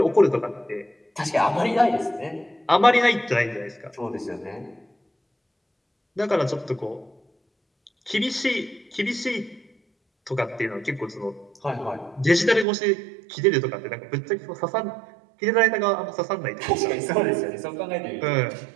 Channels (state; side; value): drops out; left; at 12.7 s